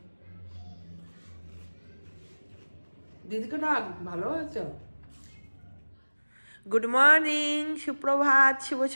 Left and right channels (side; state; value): both; inverted; correlation -1.00